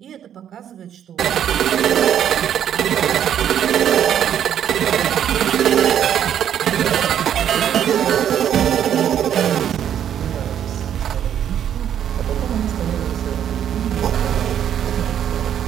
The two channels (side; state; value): left; quieter; 9.7 dB